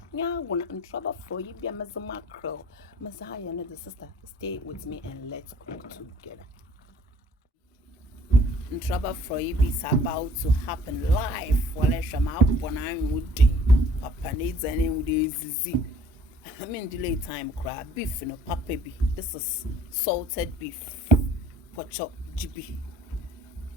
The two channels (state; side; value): normal; both; correlation 0.54